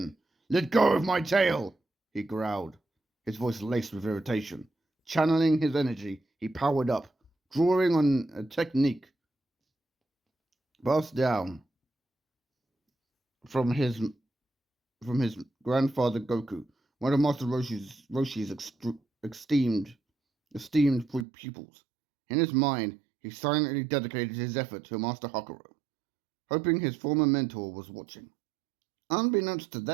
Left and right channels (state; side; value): drops out; left; at 21.2 s